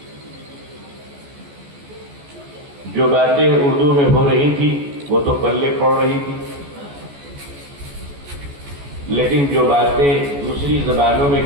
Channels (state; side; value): late; left; 14 ms